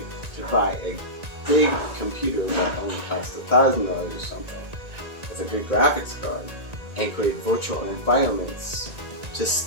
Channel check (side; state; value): left; late; 1.9 ms